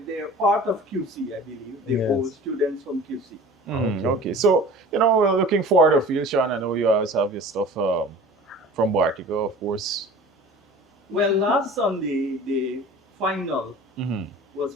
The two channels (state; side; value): normal; both; correlation 0.41